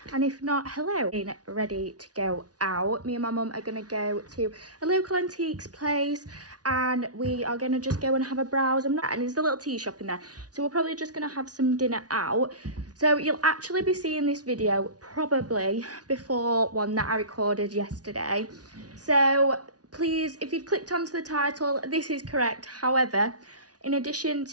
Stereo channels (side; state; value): left; late; 0.68 ms